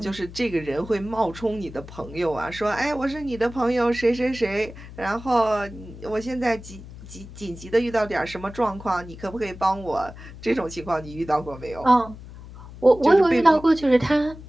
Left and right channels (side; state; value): left; noise; hum, 15 dB below the sound